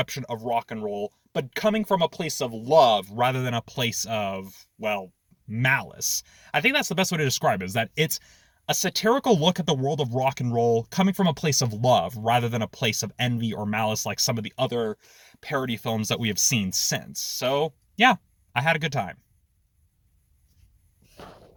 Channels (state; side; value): identical; both; correlation 1.00